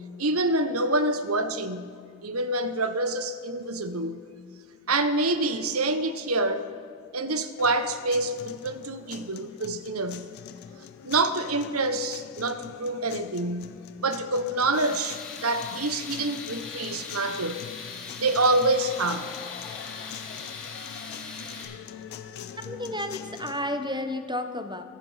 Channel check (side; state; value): both; normal; correlation -0.18